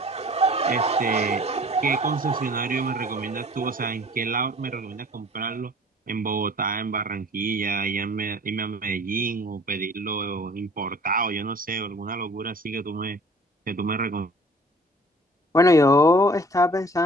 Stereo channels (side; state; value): both; normal; correlation 0.50